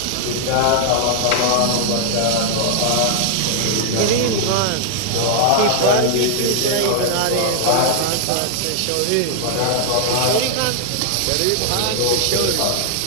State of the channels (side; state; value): both; different; correlation 0.00